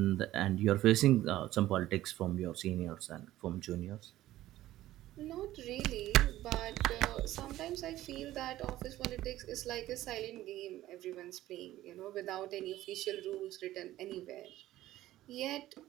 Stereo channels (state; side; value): quieter; left; 14.9 dB